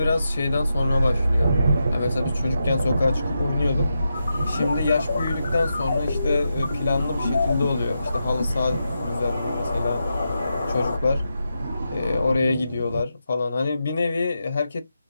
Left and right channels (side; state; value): both; inverted; correlation -0.87